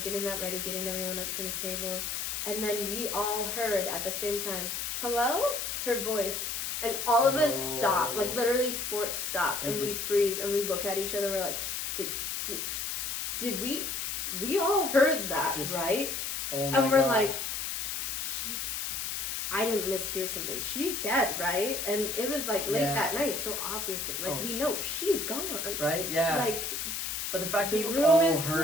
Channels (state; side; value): noise; left; hiss, 3 dB below the sound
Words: that ready, getting everyone up to the table, and then we all heard at the same time, hello, her voice, and all of us stop, like literally fork stop, and we freeze, and we look at each other, we're like, did we all heard that, right? Oh my And we're gosh. like, I didn't mishear something. She's dead, right? And it was like late that night, so obviously, like we know she's gone. Right? Yeah. Like, but the fact that the you room all is